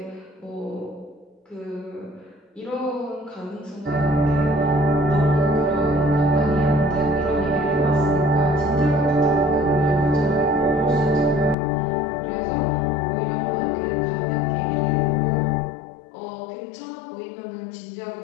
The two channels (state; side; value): drops out; right; at 11.6 s